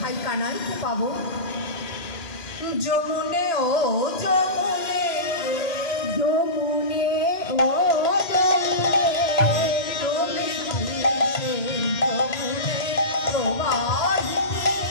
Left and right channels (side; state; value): right; late; 3.0 ms